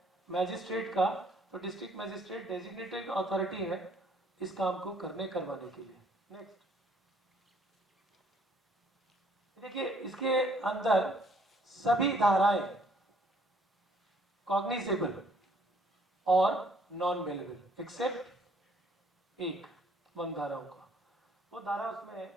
मैजिस्ट्रेट का, तो डिस्ट्रिक्ट मैजिस्ट्रेट डेजिग्नेटेड अथॉरिटी है इस काम को करवाने के लिए। नेक्स्ट देखिए, इसके अंदर सभी धाराएं कॉग्निजेबल और नॉन बेलेबल एक्सेप्ट एक वन धाराओं का, वो धारा उसमें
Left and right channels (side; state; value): both; normal; correlation 0.63